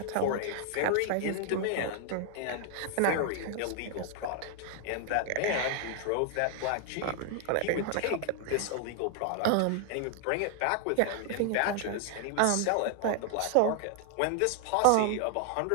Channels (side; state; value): both; different; correlation 0.00